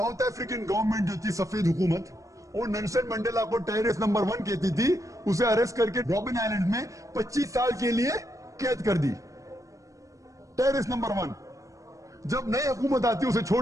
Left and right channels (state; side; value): late; left; 0.16 ms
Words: African government जो थी, सफेद हुकूमत, वो नेल्सन मंडेला को टेररिस्ट नंबर 1 कहती थी। उसे अरेस्ट करके रॉबिन आइलैंड में 25 साल के लिए कैद कर दी। Terrorist number 1। जब नई हुकूमत आती है उसे